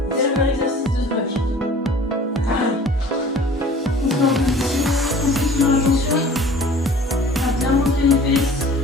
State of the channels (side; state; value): both; normal; correlation 0.47